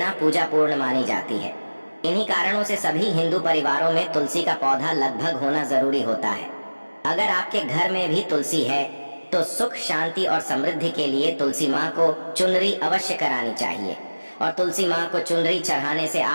पूजा पूर्ण मानी जाती है। इन्हीं कारणों से सभी हिंदू परिवारों में तुलसी का पौधा लगभग होना जरूरी होता है। अगर आपके घर में भी तुलसी है तो सुख, शांति और समृद्धि के लिए तुलसी माँ को चुनरी अवश्य करानी चाहिए और तुलसी माँ को चुनरी चढ़ाने से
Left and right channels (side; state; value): both; inverted; correlation -1.00